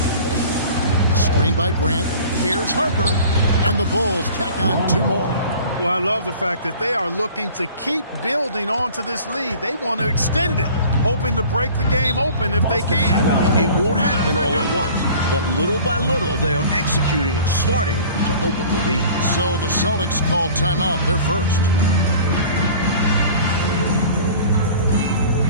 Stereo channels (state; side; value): inverted; both; correlation -0.45